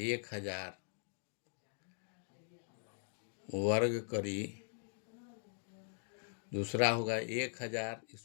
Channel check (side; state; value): right; silent; digital silence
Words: वर्ग करी, दूसरा होगा 1000,